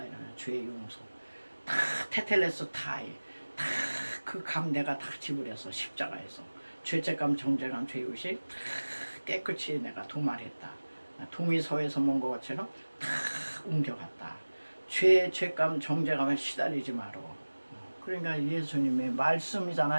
이러면 죄 용서 다 테텔레스 타이 다 그 감 내가 다 지불해서 십자가에서 죄책감 정죄감 죄의식 다 깨끗이 내가 도말했다. 동의서에서 먼 것처럼 다 옮겨갔다. 죄감 정죄감에 시달리지 마라. 그러니까 예수님의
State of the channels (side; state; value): both; inverted; correlation -1.00